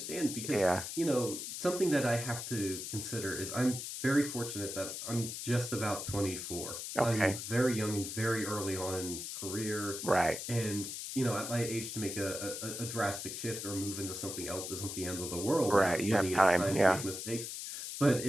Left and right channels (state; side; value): noise; left; hiss, 6 dB below the sound